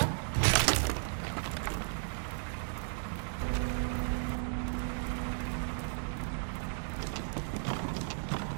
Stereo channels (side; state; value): left; silent; digital silence